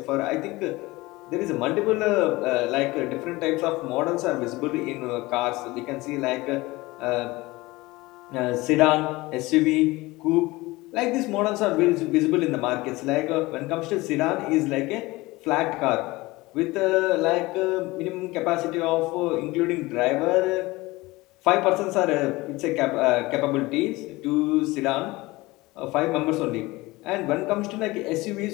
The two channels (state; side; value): quieter; right; 20.9 dB